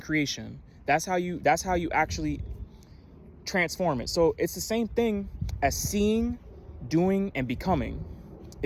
That's how you actually transform it. So it's the same thing as seeing, doing, and becoming.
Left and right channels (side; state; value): both; identical; correlation 1.00